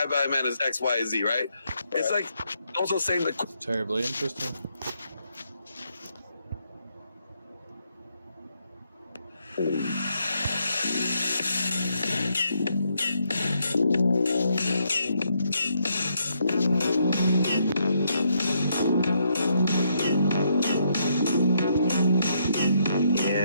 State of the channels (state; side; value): inverted; both; correlation -0.76